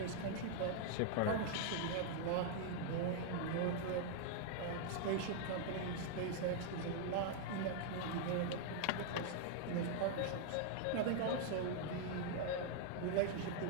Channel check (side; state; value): both; different; correlation 0.00